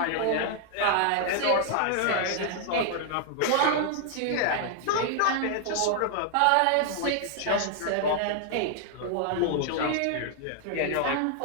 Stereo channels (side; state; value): both; different; correlation 0.00